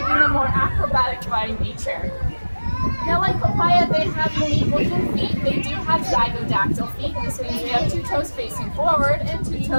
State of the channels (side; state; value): both; inverted; correlation -1.00